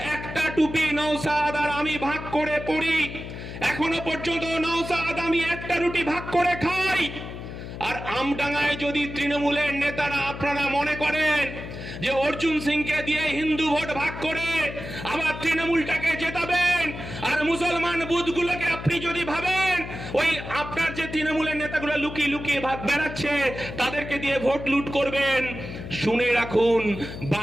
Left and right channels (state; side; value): noise; left; hum, 10 dB below the sound